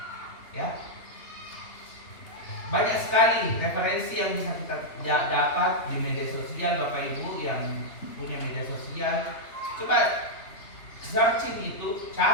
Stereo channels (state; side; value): late; right; 3.1 ms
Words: Ya, banyak sekali referensi yang bisa kita dapat di media sosial. Bapak Ibu yang punya media sosial, coba searching itu,